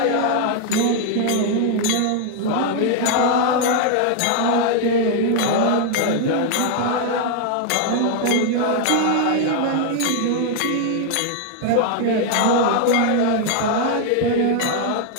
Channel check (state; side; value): different; both; correlation 0.00